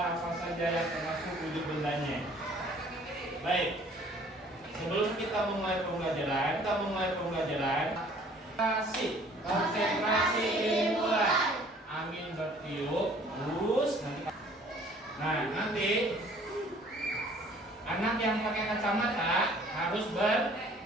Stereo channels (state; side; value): normal; both; correlation 0.55